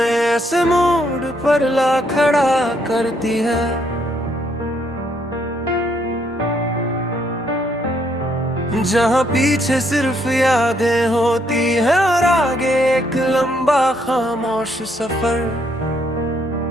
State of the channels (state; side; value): normal; both; correlation 0.71